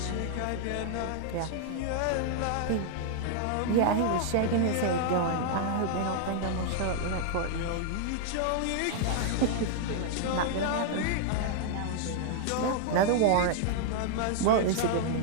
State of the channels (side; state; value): both; different; correlation 0.00